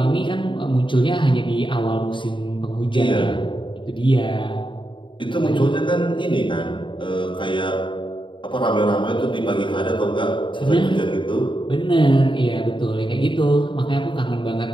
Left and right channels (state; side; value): late; right; 0.24 ms